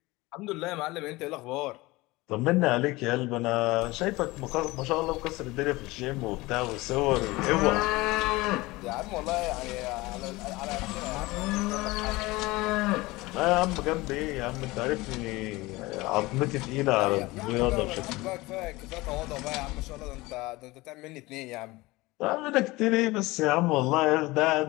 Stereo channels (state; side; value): quieter; right; 21.0 dB